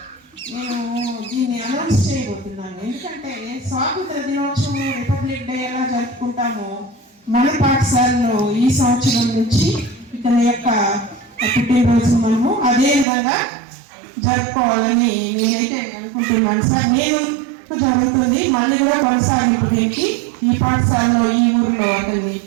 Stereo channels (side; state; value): left; drops out; at 13.1 s